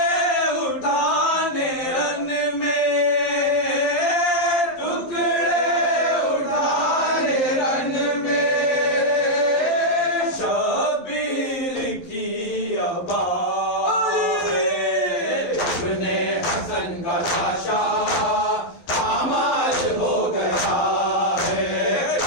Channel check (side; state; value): right; late; 11 ms